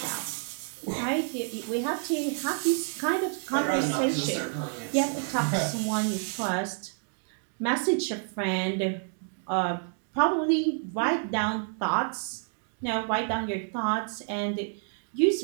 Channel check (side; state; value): left; silent; 56 dB below the other